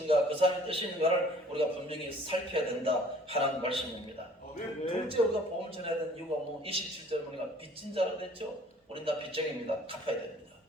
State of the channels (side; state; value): both; normal; correlation 0.54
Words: 그 사람의 뜻이 있는가를 우리가 분명히 살펴야 된다 하는 말씀입니다. 둘째 우리가 복음 전해야 되는 이유가 27절 보니까 빚진 자로 됐죠. 우린 다 빚쟁입니다. 갚아야 됩니다.